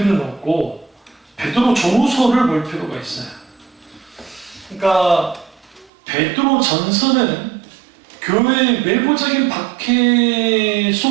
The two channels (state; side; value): drops out; left; at 5.9 s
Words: 없고 베드로 전후서를 볼 필요가 있어요. 그러니까 베드로 전서는 교회의 외부적인 박해